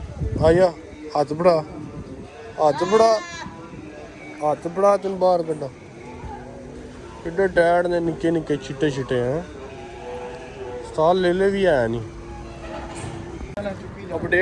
आया, हाथ बढ़ा तेन बाहर कड्डा। किड्डे टैड ने निक्के निक्के चिट्टे चिट्टे हैं, साल ले भी है नहीं।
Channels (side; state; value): both; identical; correlation 1.00